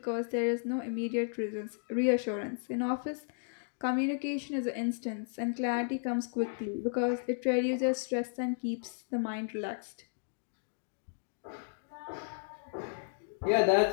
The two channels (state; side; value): silent; right; digital silence